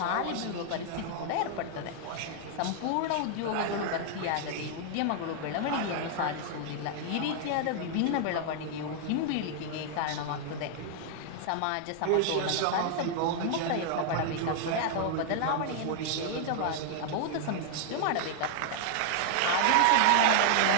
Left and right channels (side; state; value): both; different; correlation -0.01